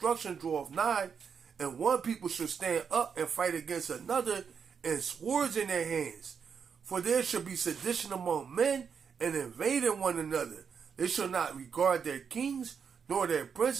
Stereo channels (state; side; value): quieter; left; 6.6 dB